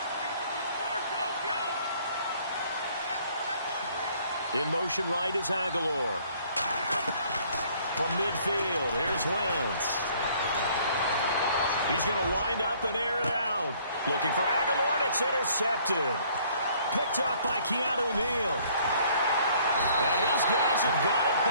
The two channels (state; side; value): inverted; both; correlation -0.60